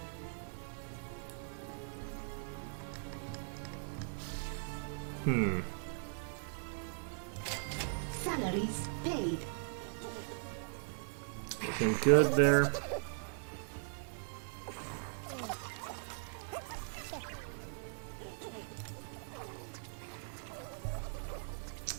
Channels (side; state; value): left; silent; digital silence